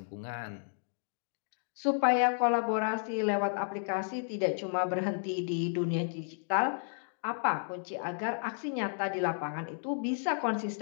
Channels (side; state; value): right; silent; digital silence